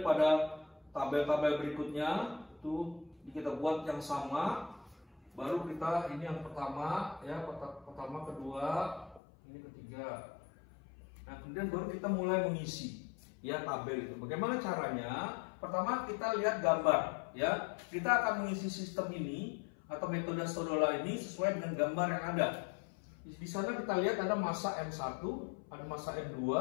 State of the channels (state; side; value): drops out; right; at 9.2 s